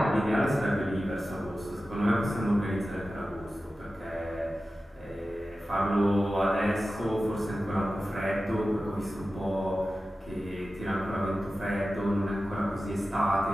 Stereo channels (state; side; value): normal; both; correlation 0.94